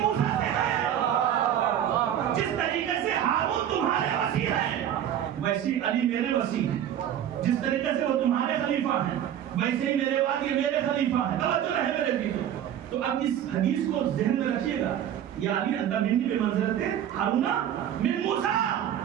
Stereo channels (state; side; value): quieter; left; 10.4 dB